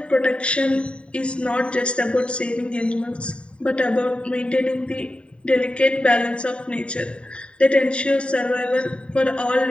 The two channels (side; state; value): right; late; 0.056 ms